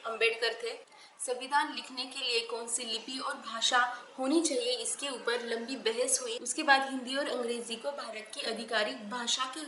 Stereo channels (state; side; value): identical; both; correlation 1.00